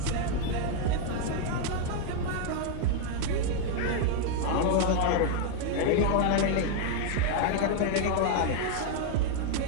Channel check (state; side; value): different; both; correlation 0.00